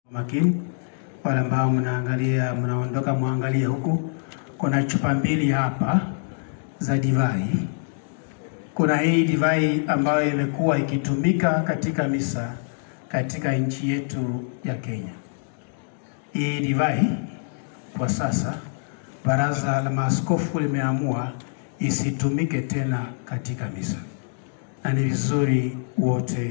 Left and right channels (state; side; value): silent; right; digital silence